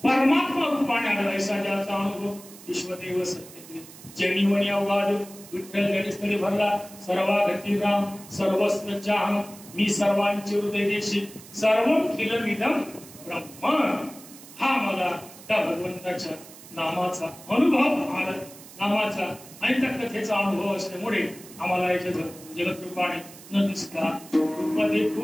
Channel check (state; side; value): noise; right; hiss, 18 dB below the sound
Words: परमात्मा रूपाने आला. ऐसा ज्याचा अनुभव विश्वदेव सत्य जनिवणी अवघाद विठ्ठल जडस्थळी भरला सर्वा गती राम सर्वस्व चाह मी सर्वांचे हृदय देशी सर्व खिलमिदम ब्रह्म. हा मला त्या भगवंताच्या नामाचा अनुभव आला. नामाचा आणि त्या कथेचा अनुभव असल्यामुळे आम्हाला याच्या जगत रूपाने न दिसता